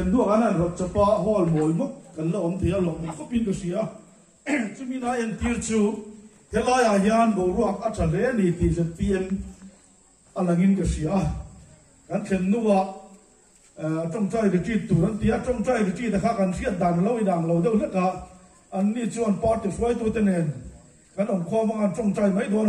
đua anh ăn rồi chapa hall mồi mốc anh là ông thì là ông có pin cái gì á chứ mình nói anh tiêu chú thế là à hiền bộ ruột ở trên đấy này thì sẽ PM anh là nghìn cái gì á anh xem đua trong trái cái chi tủ anh tiếc trong trái cái chi là khác anh siết đàn lâu đâu hết cả anh đi chọn part thì phải tôi tên này anh ông khoa mà anh trong trái mấy đứa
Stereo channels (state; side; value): identical; both; correlation 1.00